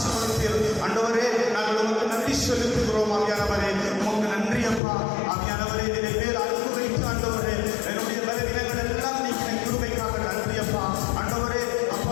ஆண்டவரே. நாங்கள் உமக்கு நன்றி செலுத்துகிறோம் ஆவியானவரே. உமக்கு நன்றி அப்பா. ஆவியானவரே, என்னுடைய மேல் அன்பு வைத்து ஆண்டவரே, என்னுடைய பலவீனங்கள் எல்லாம் நீங்க கிருபைக்காக நன்றி அப்பா. ஆண்டவரே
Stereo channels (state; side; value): drops out; right; at 4.8 s